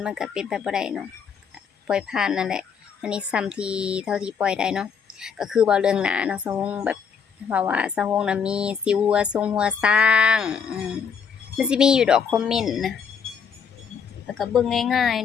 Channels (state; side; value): quieter; right; 6.5 dB